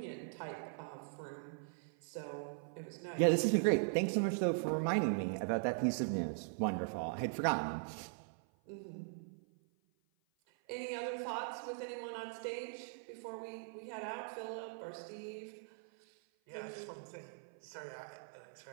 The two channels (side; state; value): left; silent; 51 dB below the other